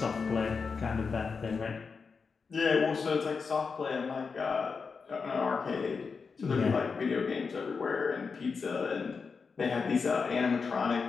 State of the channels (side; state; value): right; quieter; 5.2 dB